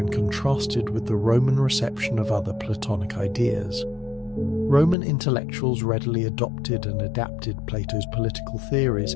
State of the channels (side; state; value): right; drops out; at 5.0 s